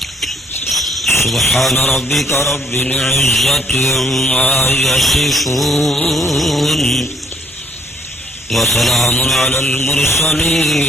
سبحان ربك رب العزة عما يصفون وسلام على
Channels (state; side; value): normal; both; correlation 0.65